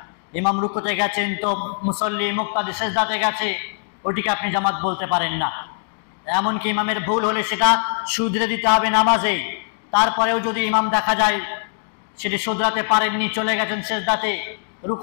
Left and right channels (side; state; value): right; silent; digital silence